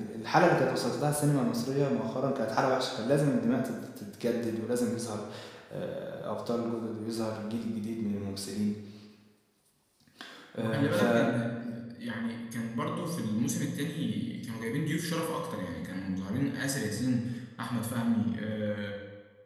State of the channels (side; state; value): both; identical; correlation 1.00